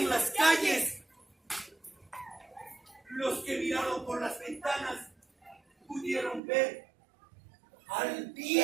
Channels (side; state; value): left; drops out; at 6.4 s